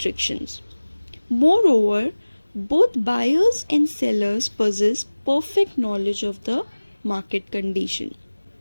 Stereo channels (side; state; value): both; inverted; correlation -1.00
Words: Moreover, both buyers and sellers possess perfect knowledge of the market condition.